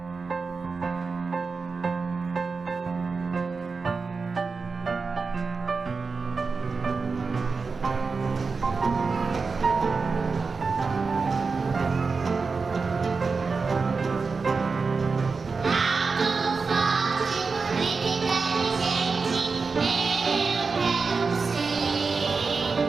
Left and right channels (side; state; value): left; quieter; 4.6 dB